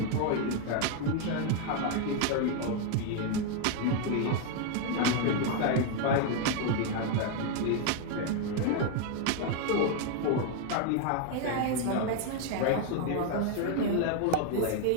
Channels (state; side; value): different; both; correlation 0.01